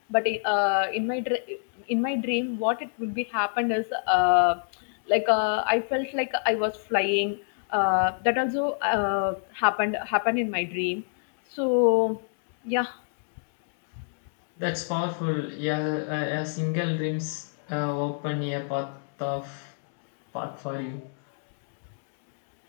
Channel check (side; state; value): right; silent; digital silence